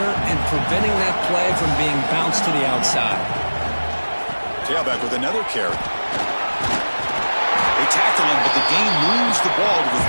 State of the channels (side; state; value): both; inverted; correlation -1.00